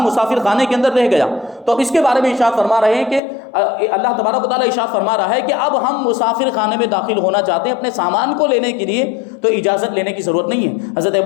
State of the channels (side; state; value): right; drops out; at 3.2 s